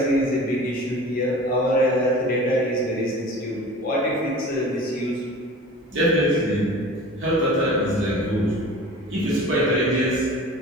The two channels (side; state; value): both; normal; correlation 0.40